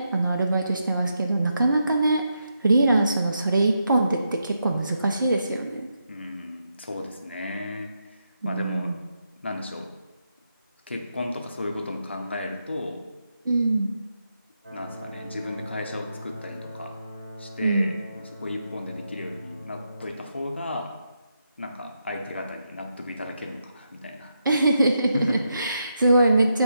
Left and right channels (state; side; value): inverted; both; correlation -0.83